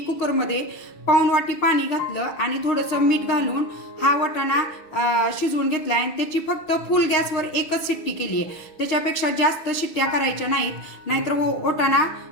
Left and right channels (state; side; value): late; right; 6.5 ms